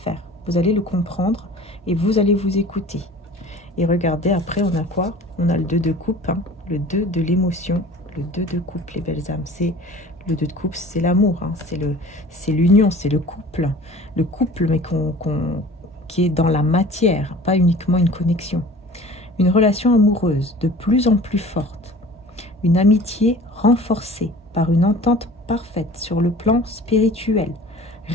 Vous allez le comprendre et vous allez vous écouter. Et regardez, après, on a quoi? On a le 2 de coupe, hein, le 2 de l'émotion, le 2 de coupe, les belles âmes. C'est Le 2 de coupe, c'est l'amour, hein, c'est l'union, c'est le couple. Le couple, mais qui est dans la matière, pas uniquement une connexion. Une relation amoureuse de plus en plus forte. Une amitié renforcée par une entente parfaite sur le plan spirituel.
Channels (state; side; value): normal; both; correlation 0.44